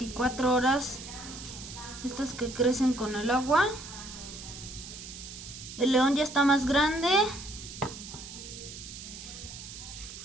horas, estos que crecen con el agua. El león ya está más grande.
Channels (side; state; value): right; noise; hiss, 12 dB below the sound